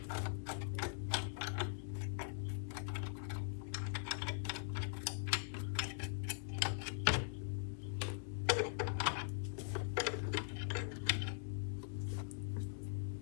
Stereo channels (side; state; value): right; silent; digital silence